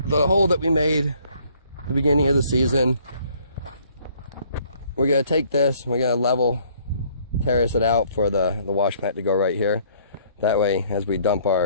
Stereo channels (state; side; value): inverted; both; correlation -0.61